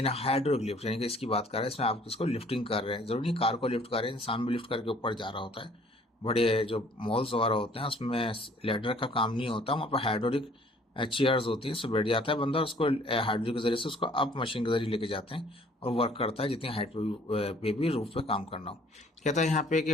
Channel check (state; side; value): normal; both; correlation 0.57